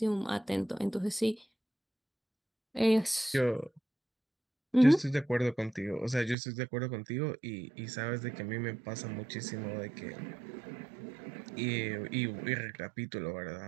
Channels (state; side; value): drops out; left; at 6.4 s